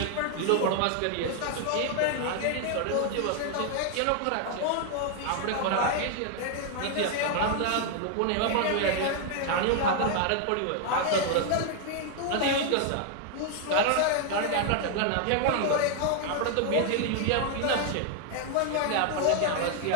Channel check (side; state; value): both; different; correlation 0.00